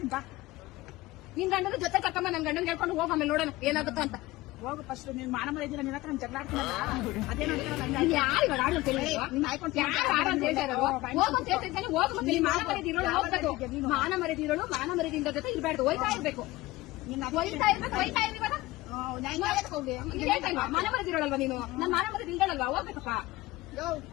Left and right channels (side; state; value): right; quieter; 19.1 dB